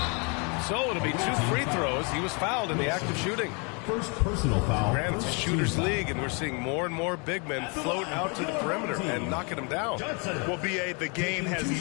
So it'll be 2 free throws. He was fouled in the act of shooting. First personal foul. Granted, it's a shooter's league, and we're seeing more and more big men float out to the perimeter and knocking them down. Well, B.A., the game has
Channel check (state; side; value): quieter; right; 33.7 dB